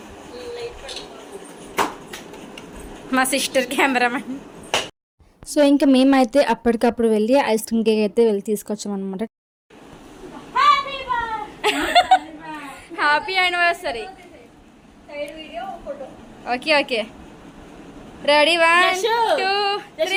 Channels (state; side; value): identical; both; correlation 1.00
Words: మా సిస్టర్ కెమెరామెన్. సో ఇంకా మేమైతే అప్పటికప్పుడు వెళ్ళి ఐస్ క్రీమ్ కేక్ అయితే వెళ్ళి తీసుకొచ్చామన్నమాట. Happy anniversary. Okay okay, ready 1 2